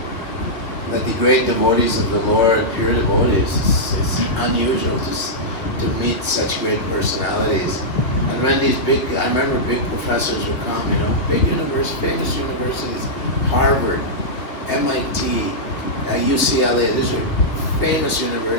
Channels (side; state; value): right; late; 2.6 ms